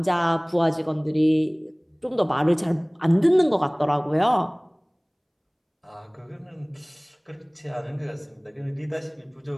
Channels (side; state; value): both; identical; correlation 1.00